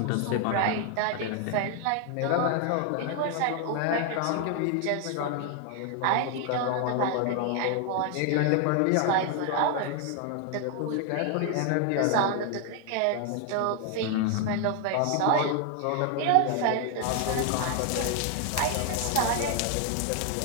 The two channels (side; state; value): both; different; correlation 0.00